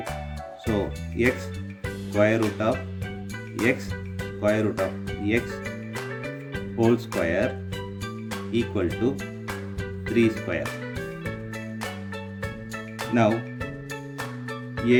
So x square root of x square root of x whole square equal to 3 square. Now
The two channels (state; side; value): identical; both; correlation 1.00